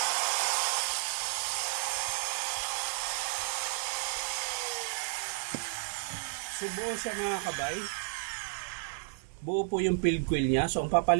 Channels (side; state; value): left; silent; 56 dB below the other